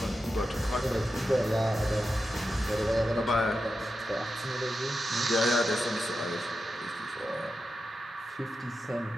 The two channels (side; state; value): both; normal; correlation 0.90